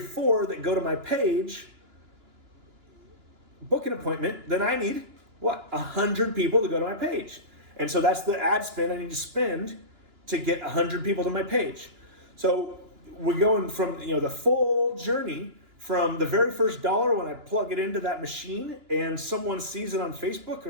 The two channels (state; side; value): late; left; 2.9 ms